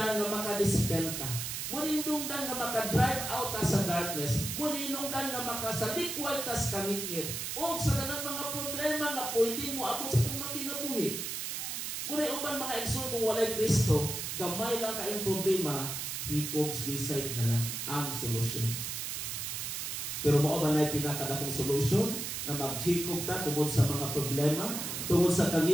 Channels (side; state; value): right; noise; hiss, 4 dB below the sound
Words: nga makadispel ta. Muna hinungdan nga makadrive out ta sa darkness. Muna hinungdan nga makasalikway ta sa kangit-ngit. O sa tanang mga problema nga pwede mo abot sa itong makinabuhi. Muna uban mga igsoon kung walay Kristo, gamay lang kayong problema, hikog suicide na lang ang solusyon. Pero mao ba na pinakadakong solusyon na maghikog ta tungod sa mga problema, tungod sa